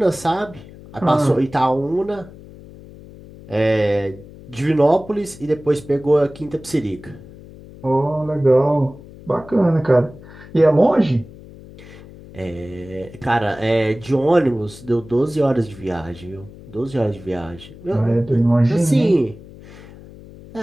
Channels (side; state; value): left; noise; hum, 19 dB below the sound